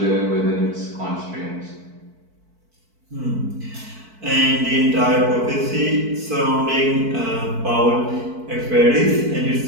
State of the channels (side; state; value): left; late; 4.5 ms